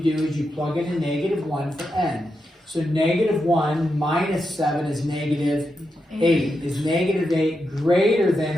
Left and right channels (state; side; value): normal; both; correlation 0.86